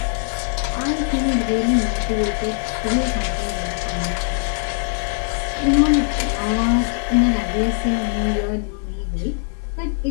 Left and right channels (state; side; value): silent; right; 57 dB below the other